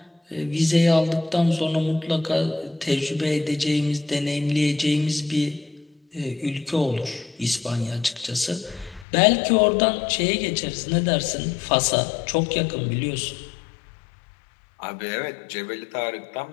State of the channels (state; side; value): drops out; right; at 9.1 s